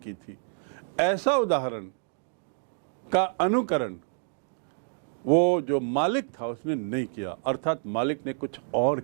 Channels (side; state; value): left; silent; digital silence